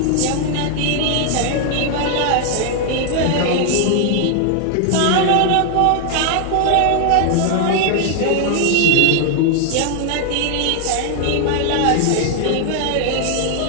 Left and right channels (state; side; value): different; both; correlation 0.00